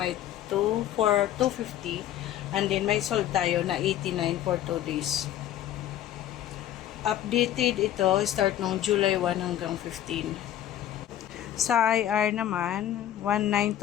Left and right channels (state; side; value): quieter; right; 11.8 dB